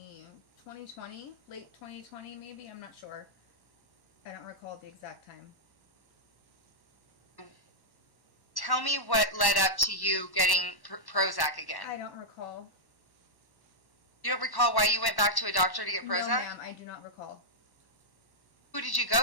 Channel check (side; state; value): right; late; 1.1 ms